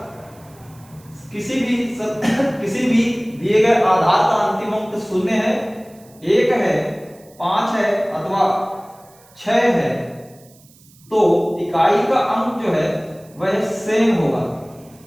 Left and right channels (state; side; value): noise; right; hiss, 27 dB below the sound